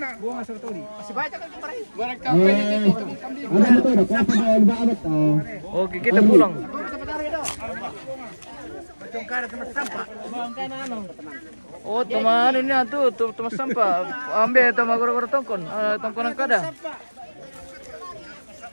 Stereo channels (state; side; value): inverted; both; correlation -1.00